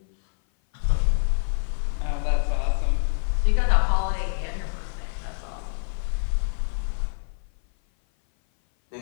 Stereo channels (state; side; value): silent; right; 57 dB below the other